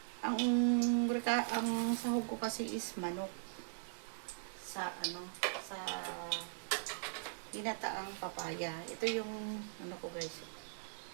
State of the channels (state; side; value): silent; left; 51 dB below the other